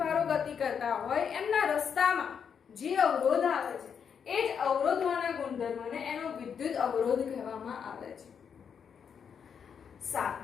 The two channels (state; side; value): quieter; right; 7.1 dB